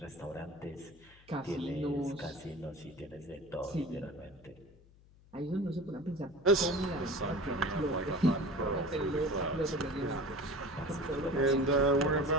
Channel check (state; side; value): noise; left; hum, 26 dB below the sound